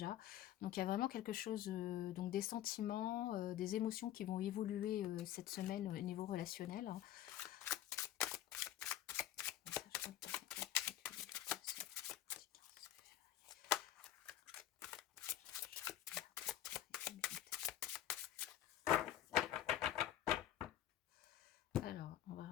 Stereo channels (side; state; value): right; quieter; 12.3 dB